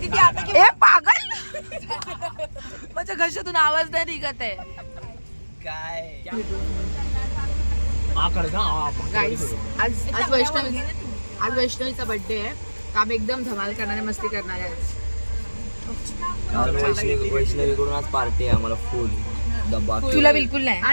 ती आता ए पागल माझ्या घशातून आवाज नाही निघत आहे. काय गाईस आज वैष्णवीचा बर्थडे आहे. तर आम्ही एकदम धमाल करणारे मस्ती करणार आहे. वैष्णवीकडून आज पार्टी आहे आम्हाला फुल डब्बा. तुला बिलकुल नाही.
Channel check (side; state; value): both; inverted; correlation -1.00